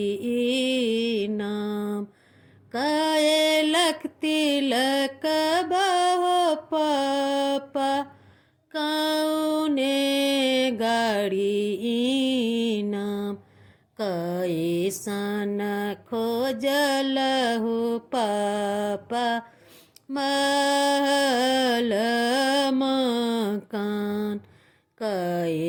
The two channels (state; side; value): identical; both; correlation 1.00